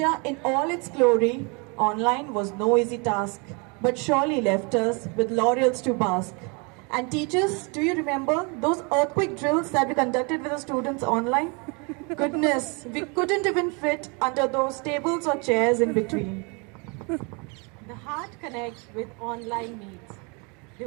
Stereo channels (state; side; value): quieter; left; 32.0 dB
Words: in all its glory, online was no easy task, but surely left us with laurels to bask. And teachers, do you remember those earthquake drills that we conducted with the students online? Goodness, we couldn't even fit under those tables or chairs in between. The heart connects with online meets,